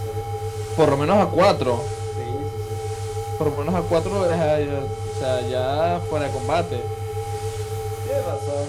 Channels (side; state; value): both; identical; correlation 1.00